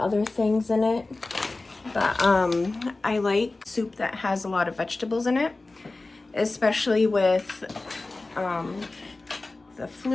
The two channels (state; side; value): quieter; right; 3.2 dB